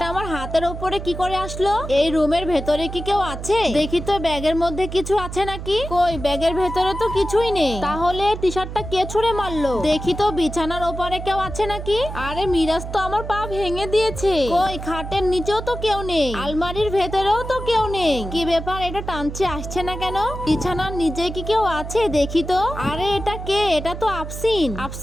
আমার হাতের উপরে কি করে আসলো? এই রুমের ভেতরে কি কেউ আছে? দেখি তো ব্যাগের মধ্যে কিছু আছে নাকি। কই ব্যাগের ভেতরে তো কিছুই নেই। তাহলে টি শার্টটা কে ছুঁড়ে মারলো? দেখি তো বিছানার ওপরে কেউ আছে নাকি। আরে মিরাজ তো আমার পা ভেঙে দিয়েছে। কই খাটের নিচেও তো কেউ নেই। আলমারির ভেতরেও তো কেউ নেই। কি ব্যাপার? এটা টানছে আসছে না কেন? বিছানার নিচে কি কেউ আছে? দেখি তো। আরে এটা কে? এটা তো আফসিন।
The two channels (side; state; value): right; noise; hum, 8 dB below the sound